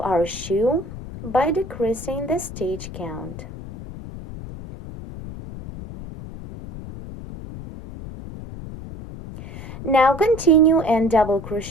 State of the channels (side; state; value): left; noise; rumble, 12 dB below the sound